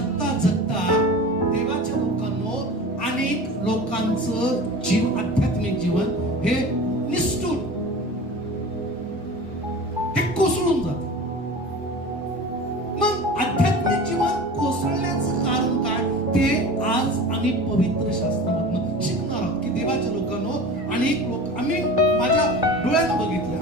जगता देवाच्या लोकांनो, अनेक लोकांचं आध्यात्मिक जीवन हे निष्ठून, हे कोसळून जातं. मग आध्यात्मिक जीवन कोसळण्याचं कारण काय ते आज आम्ही पवित्र शास्त्रामधून शिकणार आहोत. की देवाच्या लोकांनो, अनेक लोक, आम्ही माझ्या डोळ्यानं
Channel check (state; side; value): normal; both; correlation 0.35